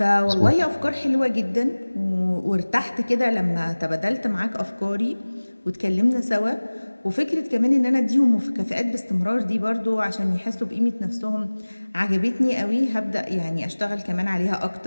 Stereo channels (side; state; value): both; inverted; correlation -1.00